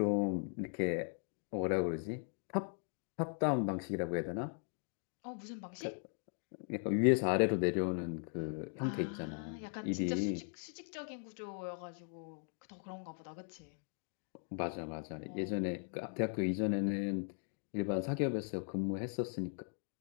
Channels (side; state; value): right; silent; 52 dB below the other